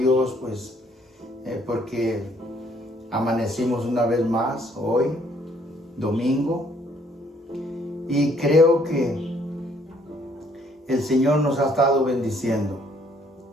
porque amanecimos una vez más hoy, domingo, y creo que el Señor nos ha estado bendiciendo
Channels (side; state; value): both; normal; correlation 0.65